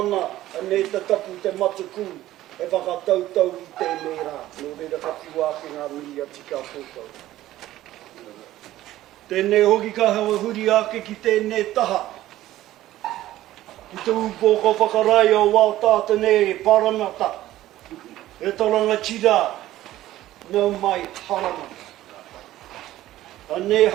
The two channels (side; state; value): left; quieter; 14.7 dB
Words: anei te tapu te matuku, e whakatautau i tēnei rā. Nō reira kapiwāki ngā mihi ati kia koutou. Tēnei hoki ka hewa huri ake ki tēnei taha. Ki te upoko whakarai o wā tātane paramata. E toranga tira, nau mai haramata. Anei